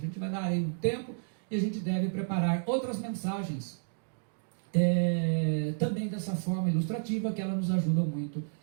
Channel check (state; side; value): silent; left; digital silence